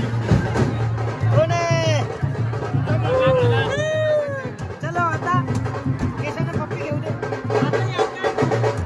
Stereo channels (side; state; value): both; identical; correlation 1.00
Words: कोण आहे? चलो आता केसानं पप्पी घेऊ दे.